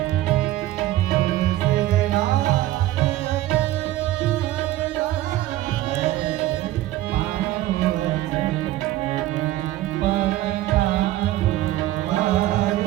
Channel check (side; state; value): left; quieter; 15.2 dB